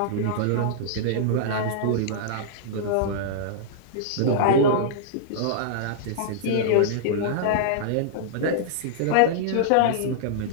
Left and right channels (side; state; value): both; different; correlation -0.02